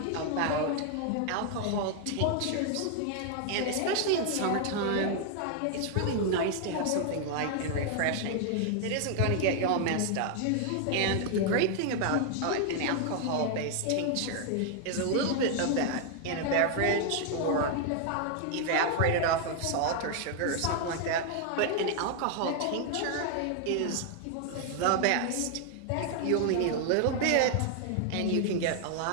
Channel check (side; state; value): both; different; correlation 0.00